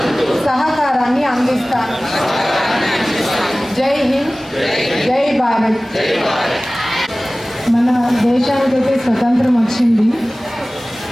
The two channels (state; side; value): normal; both; correlation 0.98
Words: సహకారాన్ని అందిస్తాను. జై హింద్, జై భారత్. మన దేశానికైతే స్వతంత్రం వచ్చింది,